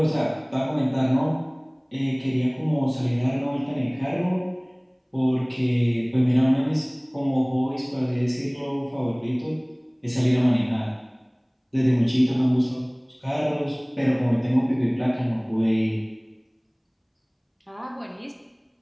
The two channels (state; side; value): identical; both; correlation 1.00